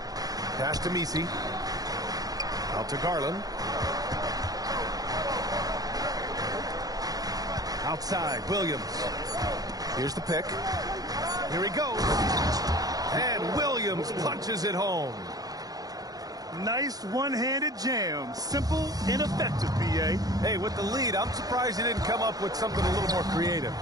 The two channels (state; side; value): late; left; 0.18 ms